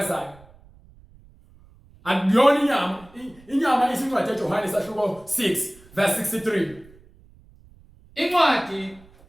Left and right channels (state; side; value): noise; right; rumble, 26 dB below the sound